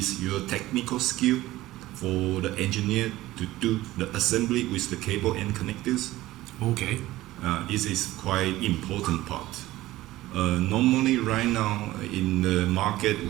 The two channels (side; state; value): left; quieter; 16.7 dB